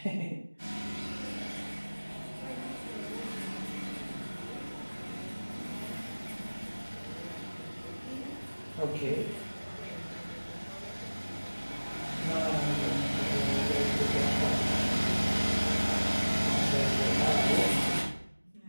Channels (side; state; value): both; inverted; correlation -1.00